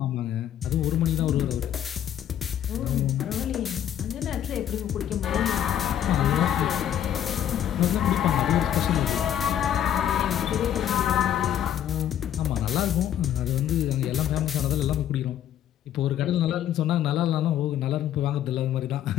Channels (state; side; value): quieter; right; 10.5 dB